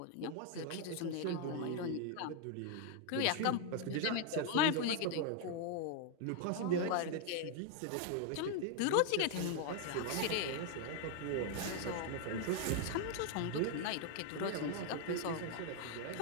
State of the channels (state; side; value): different; both; correlation 0.00